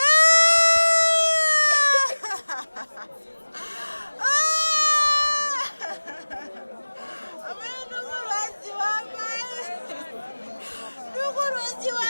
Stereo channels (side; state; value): both; inverted; correlation -1.00